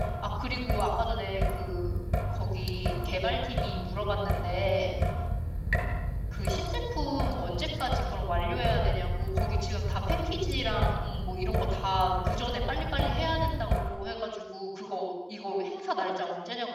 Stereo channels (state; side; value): identical; both; correlation 1.00